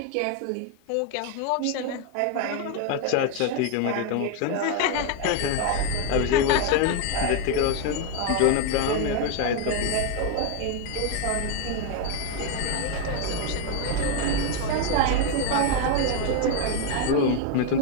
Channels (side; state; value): both; different; correlation 0.01